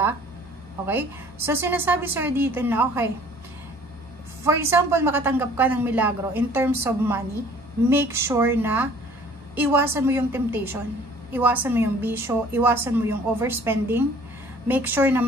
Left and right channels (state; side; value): normal; both; correlation 0.53